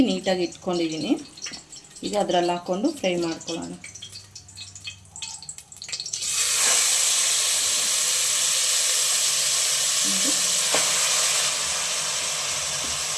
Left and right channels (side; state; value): both; identical; correlation 1.00